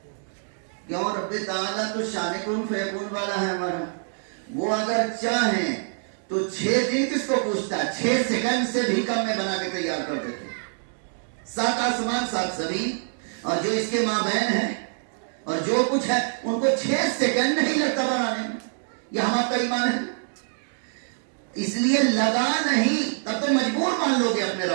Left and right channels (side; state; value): left; silent; digital silence